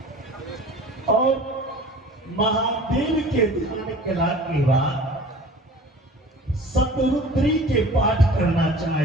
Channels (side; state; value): both; normal; correlation 0.43